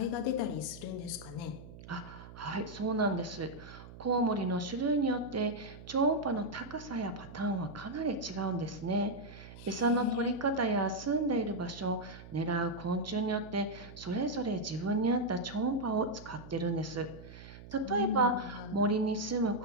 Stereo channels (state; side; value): noise; right; hum, 16 dB below the sound